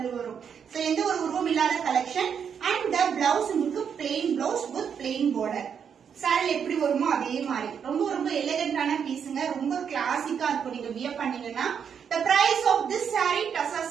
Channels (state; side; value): quieter; left; 7.4 dB